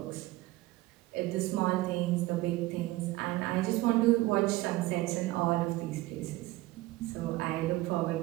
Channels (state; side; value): quieter; left; 18.5 dB